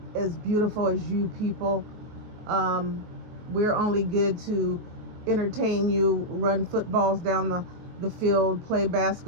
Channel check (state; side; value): late; left; 23 ms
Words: as beautiful as you people. We're only good to entertain you, run footballs down the field, play